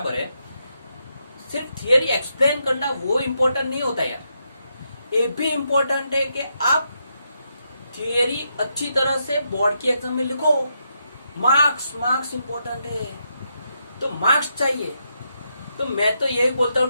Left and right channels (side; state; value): both; inverted; correlation -0.81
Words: है, सिर्फ थियरी एक्सप्लेन करना वो इम्पोर्टेंट नहीं होता यार। ये भी इम्पोर्टेंट है कि आप थियरी अच्छी तरह से बोर्ड की एग्जाम में लिखो। मार्क्स इम्पोर्टेंट है, तो मार्क्स चाहिए। तो मैं तो यही बोलता